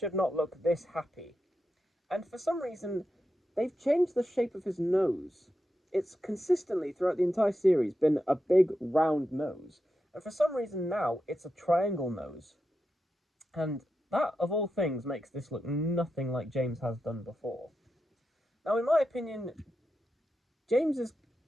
not look this happy. And for some reason, they've changed the shape of his nose. It's consistently, throughout the entire series, been a big, round nose. And for some reason now, it's a triangle nose. And that, of all things, makes this look nothing like James has done before. Now, in my opinion, James is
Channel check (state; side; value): normal; both; correlation 0.88